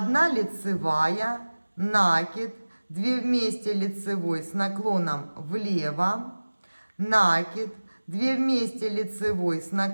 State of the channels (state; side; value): inverted; both; correlation -1.00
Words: лицевая, накид, 2 вместе лицевой с наклоном влево, накид, 2 вместе лицевой с